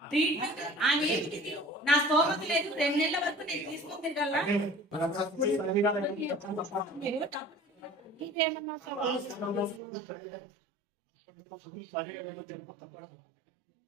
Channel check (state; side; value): drops out; left; at 9.8 s